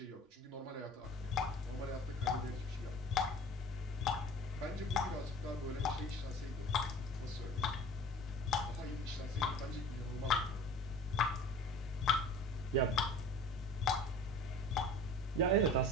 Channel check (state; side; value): normal; both; correlation 0.43